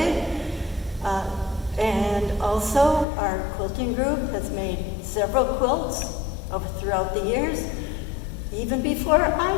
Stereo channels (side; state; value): right; drops out; at 3.1 s